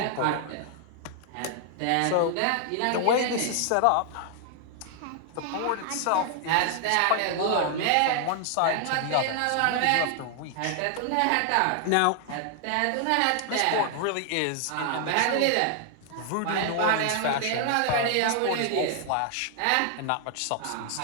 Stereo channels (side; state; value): both; different; correlation 0.00